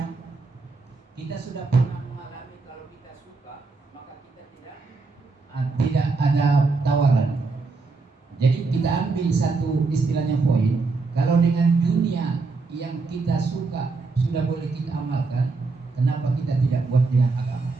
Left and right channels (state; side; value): quieter; left; 4.0 dB